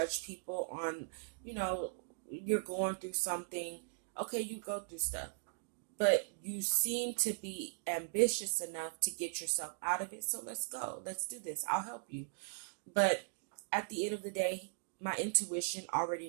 people on, you're going through something. Okay, you go through stuff, but you seem to be ambitious enough to get yourself out of it. So let's go. Let's do this. I'll help you. But at the end of the day, my intuition already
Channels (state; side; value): silent; left; digital silence